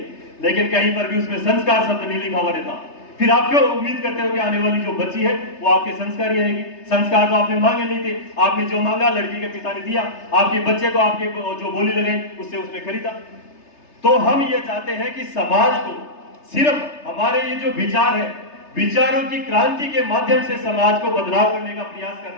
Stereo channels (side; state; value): right; late; 3.3 ms